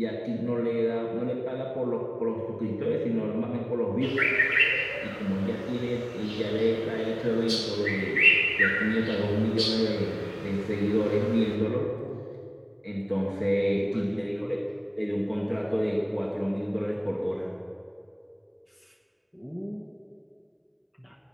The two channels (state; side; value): identical; both; correlation 1.00